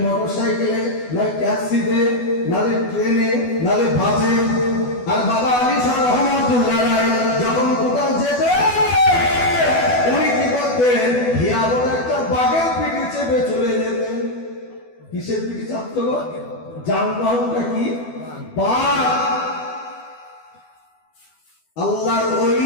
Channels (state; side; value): late; right; 12 ms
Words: মোটর সাইকেলে, নাই ট্যাক্সিতে, নালে ট্রেনে, নালে বাসে। আর বাবা আলী শাহ রহমাতুল্লাহ আলাইহি যখন কোথাও যেতেন, উনি কি করতেন? হিয়া বলে একটা বাঘের পিঠে চেপে চলে যেতেন। কিসের পিঠে চাপতো গো? যানবাহনটা কি? বাঘ। আল্লাহর